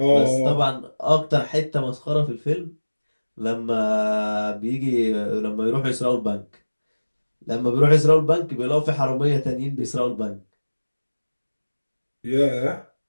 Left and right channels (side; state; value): both; inverted; correlation -1.00